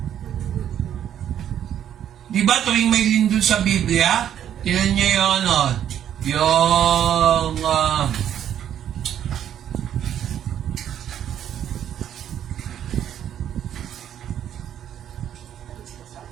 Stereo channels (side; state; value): left; quieter; 10.1 dB